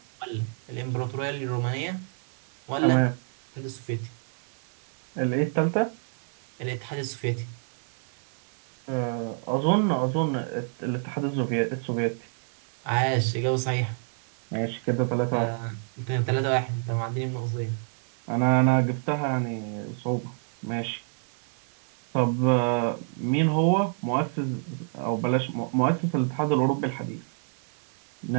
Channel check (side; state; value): left; silent; 59 dB below the other